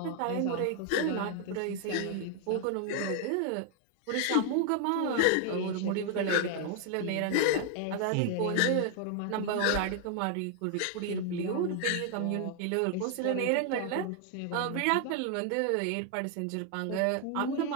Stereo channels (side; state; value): both; different; correlation 0.00